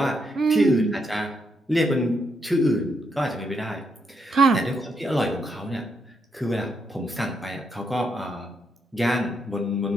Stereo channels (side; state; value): both; normal; correlation 0.78